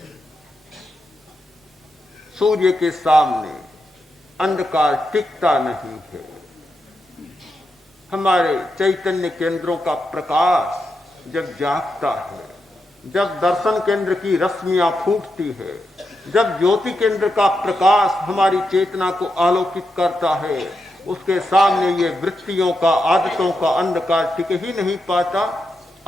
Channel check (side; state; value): both; normal; correlation 0.86